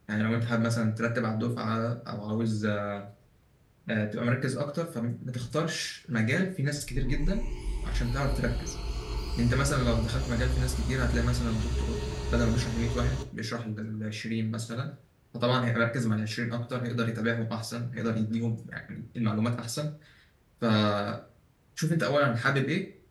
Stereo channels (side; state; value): both; identical; correlation 1.00